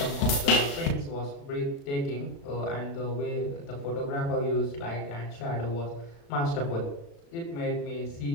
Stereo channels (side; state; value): right; late; 35 ms